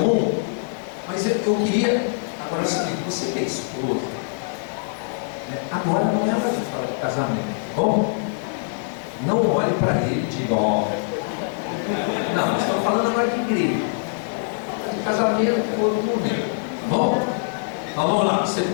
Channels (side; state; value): right; silent; 60 dB below the other